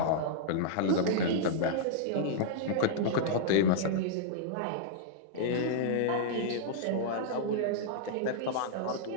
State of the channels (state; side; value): different; both; correlation -0.02